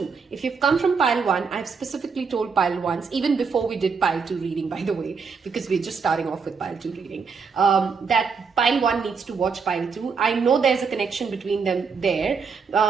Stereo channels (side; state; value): left; quieter; 5.5 dB